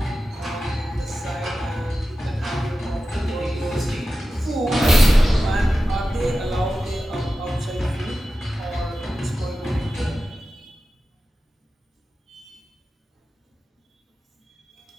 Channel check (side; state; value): both; normal; correlation 0.93